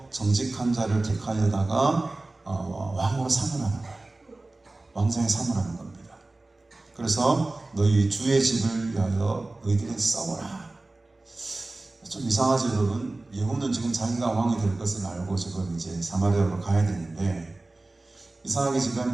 정직한 자를 택하여다가 왕으로 삼으라는 거예요. 왕자에 삼으라는 겁니다. 그래서 너희 주의 집을 위하여 너희들이 싸워라. 좀 이상하죠, 여러분? 예후는 지금 자기가 왕이 될 것을 알고 지금 이제 사마리아로 가야 되는데 이상하게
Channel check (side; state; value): left; quieter; 3.0 dB